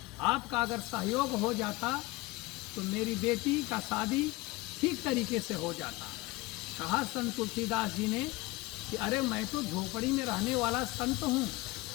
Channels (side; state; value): right; quieter; 21.7 dB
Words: आपका अगर सहयोग हो जाता तो मेरी बेटी का शादी ठीक तरीके से हो जाता। कहा संत तुलसीदास जी ने कि अरे, मैं तो झोपड़ी में रहने वाला संत हूँ,